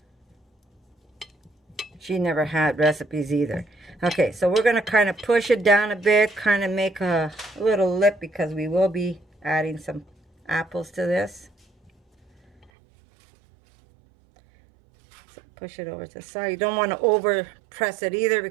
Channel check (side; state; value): left; drops out; at 12.7 s